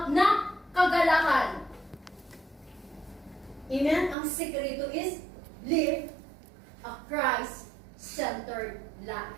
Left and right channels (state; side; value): drops out; left; at 4.2 s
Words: na kagalakan? Amen? Ang sikrito is live a Christ-centered